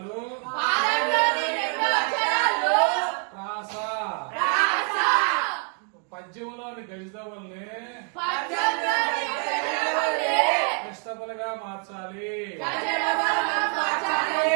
ప్రాస. పద్యంలోని గజదవుల్ని కృష్ణపులుగా మార్చాలి.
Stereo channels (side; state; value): left; quieter; 39.5 dB